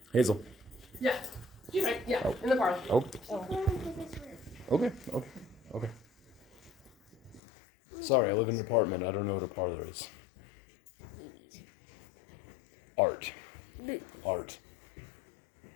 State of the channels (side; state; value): right; drops out; at 7.4 s